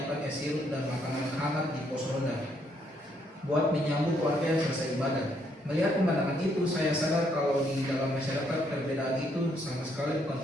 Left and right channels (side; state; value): both; normal; correlation 0.72